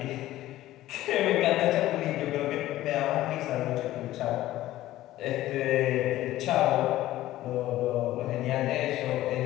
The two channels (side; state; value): right; quieter; 15.1 dB